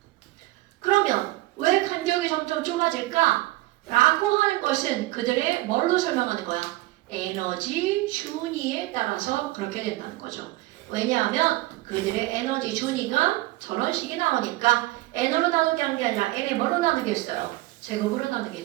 그러면 왜 간격이 점점 좁아질까? 라고 하는 것은 그들의 뭘로 설명하는 거야? 에너지 준위에 따라서 그렇게 된다는 거죠. 왜냐하면 그들의 에너지 준위가 저런 식이 나오니까 n으로 나누게 한 게 아니라 n에 뭘로 나누겠어요? 제곱으로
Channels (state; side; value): quieter; left; 18.9 dB